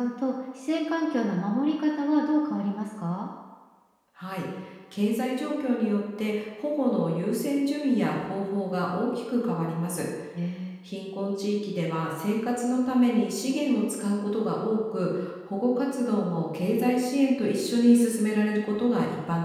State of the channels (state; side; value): identical; both; correlation 1.00